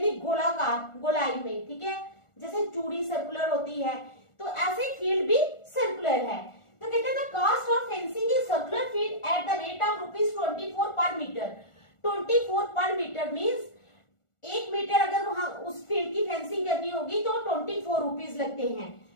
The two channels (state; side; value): late; right; 1.4 ms